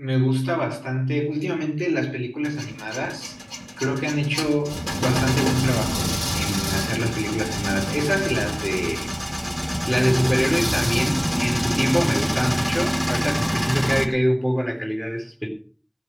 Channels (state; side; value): identical; both; correlation 1.00